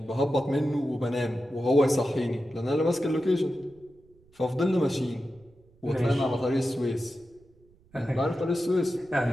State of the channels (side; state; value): right; noise; rumble, 30 dB below the sound